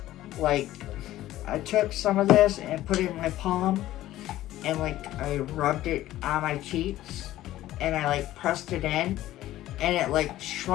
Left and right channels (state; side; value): quieter; right; 14.6 dB